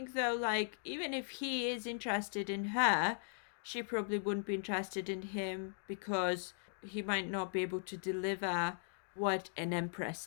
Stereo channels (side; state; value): right; silent; digital silence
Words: though, like, even if he is interested in her, she probably wouldn't be interested in him because he might not be able to deliver what an